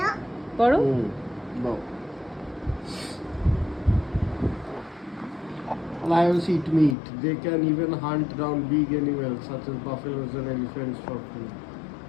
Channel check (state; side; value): drops out; right; at 7.0 s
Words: পড়ো। Lions eat meat. They can even hunt down big animals such as buffaloes and elephants for food.